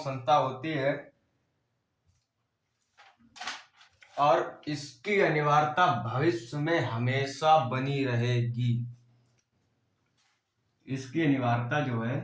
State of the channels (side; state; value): both; identical; correlation 1.00